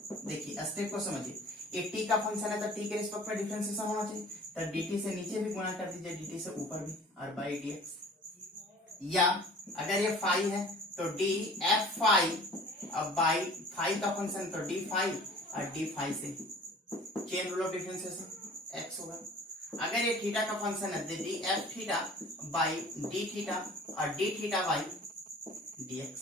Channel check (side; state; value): both; normal; correlation 0.47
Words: देखिए स्टेप को समझिए। एक टी का फंक्शन है तो टी के रिस्पेक्ट में डिफरेंशिएशन होना चाहिए, तो dt से नीचे भी गुना कर दीजिए, dt से ऊपर भी, और बाई dx। या अगर ये फाई है तो डी एफ फाई, अब बाई फाई का फंक्शन तो डी फाई, और डी फाई से chain rule of differentiation x होगा। अगर ये थीटा का फंक्शन है d F theta by D theta, और d theta by D x,